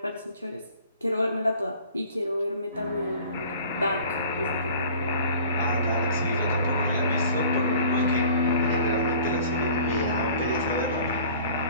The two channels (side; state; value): both; inverted; correlation -0.48